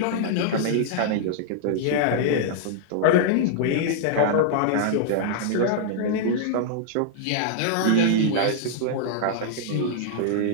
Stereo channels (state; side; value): different; both; correlation -0.01